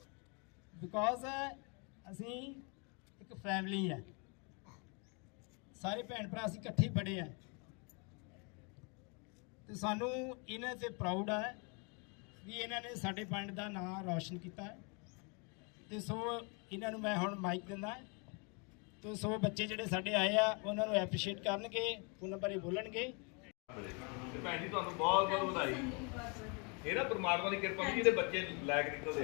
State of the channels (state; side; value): quieter; right; 34.0 dB